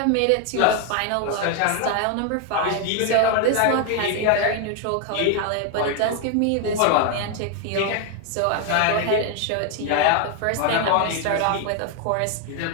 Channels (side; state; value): both; different; correlation 0.01